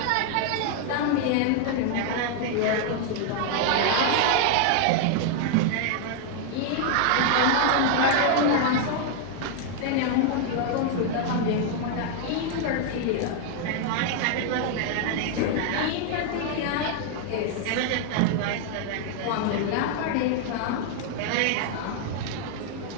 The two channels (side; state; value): both; different; correlation 0.00